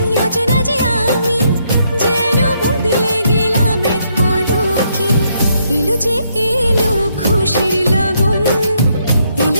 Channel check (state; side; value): inverted; both; correlation -0.74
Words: অচেনা যে আমি, যেন বদলে গেলাম এক পলকে। এলো যে এলো খুশির লগন,